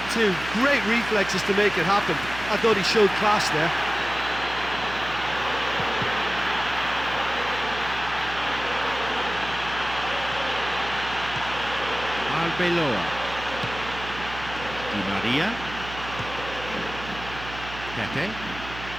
too. Great reflexes to make it happen. I thought he showed class there. Arbeloa. Di Maria. Pepe.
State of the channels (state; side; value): noise; right; hum, 12 dB below the sound